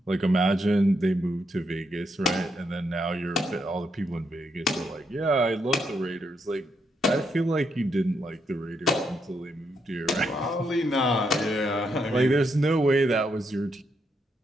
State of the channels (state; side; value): normal; both; correlation 0.79